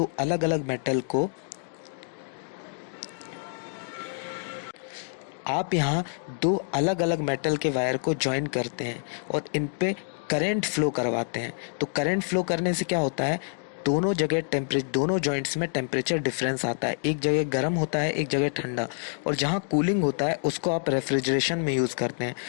अलग अलग मेटल को, आप यहाँ 2 अलग अलग मेटल के वायर को ज्वाइन करते हैं और इन पे करंट फ्लो करवाते हैं। तो करंट फ्लो करने से क्या होता है, दोनों जॉइंट्स में टेम्परेचर डिफरेंस आता है। एक जगह गर्म होता है, एक जगह ठंडा, और जहाँ कूलिंग होता है उसको आप रेफ्रिजरेशन में यूज़ करते हैं।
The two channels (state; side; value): silent; right; digital silence